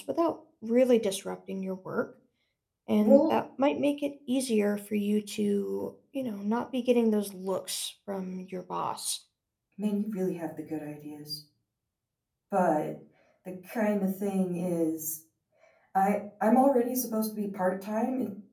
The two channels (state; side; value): identical; both; correlation 1.00